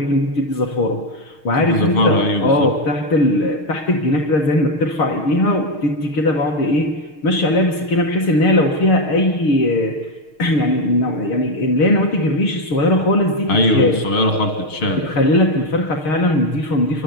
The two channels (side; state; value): right; late; 6.5 ms